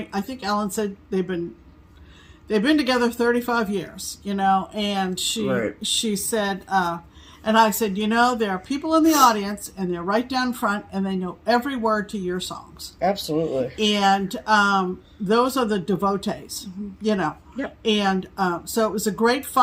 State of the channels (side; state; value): both; identical; correlation 1.00